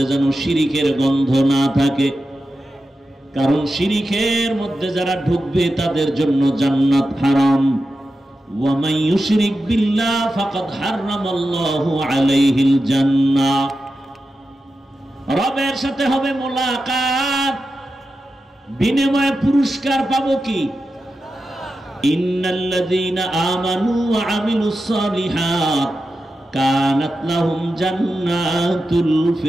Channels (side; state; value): both; normal; correlation 0.91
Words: যেন শিরিকের গন্ধ না থাকে। কারণ শিরিকের মধ্যে যারা ঢুকবে তাদের জন্য জান্নাত হারাম। ওয়া মান ইউশরিক বিল্লাহ ফাকাদ হারামাল্লাহু আলাইহিল জান্নাহ। রবের সাথে হবে মুলাকাত, বিনিময়ে পুরস্কার পাবো কি? ইন্নাল্লাযীনা আমানু ওয়া আমিলুস সালিহাত কানাত লাহুম জান্নাতুল